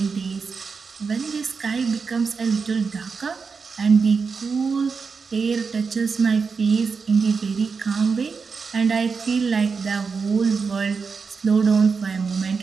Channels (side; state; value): left; quieter; 5.2 dB